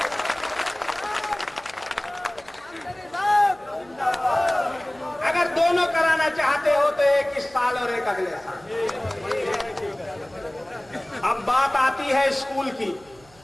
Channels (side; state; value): right; noise; hum, 28 dB below the sound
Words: अगर दोनों कराना चाहते हो तो 1 इस साल और 1 अगले साल। अब बात आती है स्कूल की।